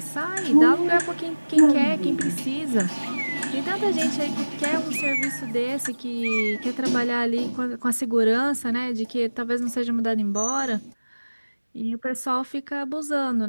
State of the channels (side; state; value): both; inverted; correlation -1.00